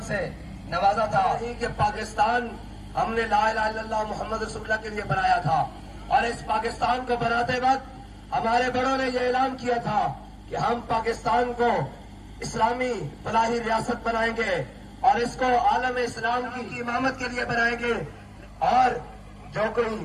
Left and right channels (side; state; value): both; identical; correlation 1.00